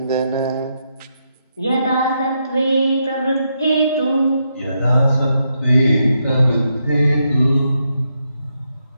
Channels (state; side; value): inverted; both; correlation -0.81